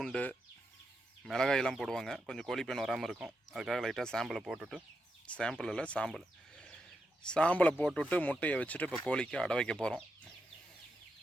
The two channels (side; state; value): both; normal; correlation 0.85